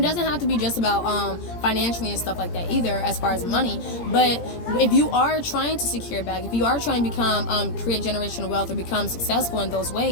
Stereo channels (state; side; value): late; right; 17 ms